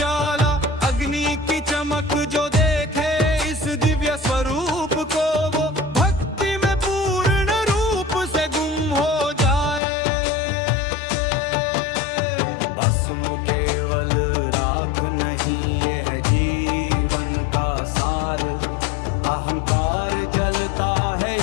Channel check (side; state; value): right; drops out; at 9.8 s